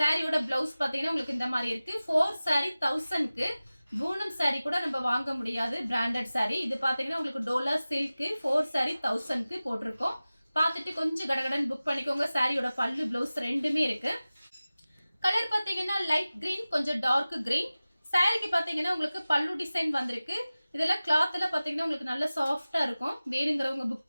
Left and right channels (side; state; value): both; inverted; correlation -0.97